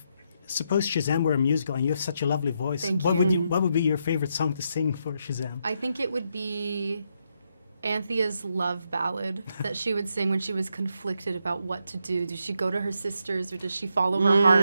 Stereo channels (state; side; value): inverted; both; correlation -0.80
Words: suppose Shazam were a musical and you have such a lovely voice, Thank what you. what would be your favorite song to sing for Shazam? I think it would be Anthea's love ballad that she would sing when she was conflicted about what to do. Does she go to her sisters or does she follow her